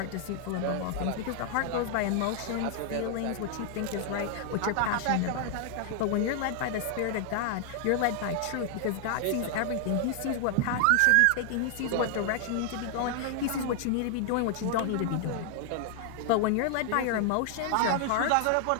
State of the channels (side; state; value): both; different; correlation 0.00